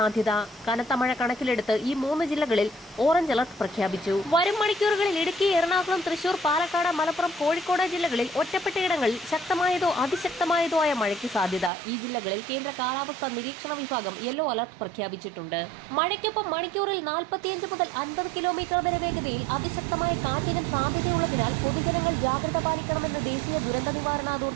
കനത്ത മഴ കണക്കിലെടുത്ത് ഈ 3 ജില്ലകളിൽ ഓറഞ്ച് അലർട്ട് പ്രഖ്യാപിച്ചു. വരും മണിക്കൂറുകളിൽ ഇടുക്കി, എറണാകുളം, തൃശൂർ, പാലക്കാട്, മലപ്പുറം, കോഴിക്കോട് ജില്ലകളിൽ ഒറ്റപ്പെട്ടയിടങ്ങളിൽ ശക്തമായതോ അതിശക്തമായതോ ആയ മഴയ്ക്ക് സാധ്യത. ഈ ജില്ലകളിൽ കേന്ദ്ര കാലാവസ്ഥാ നിരീക്ഷണ വിഭാഗം യെല്ലോ അലർട്ട് പ്രഖ്യാപിച്ചിട്ടുണ്ട്. മഴയ്ക്കൊപ്പം മണിക്കൂറിൽ 45 മുതൽ 50 കിലോമീറ്റർ വരെ വേഗതയിൽ അതിശക്തമായ കാറ്റിനും സാധ്യതയുള്ളതിനാൽ പൊതുജനങ്ങൾ ജാഗ്രത പാലിക്കണമെന്ന് ദേശീയ ദുരന്ത നിവാരണ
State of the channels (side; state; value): left; drops out; at 11.7 s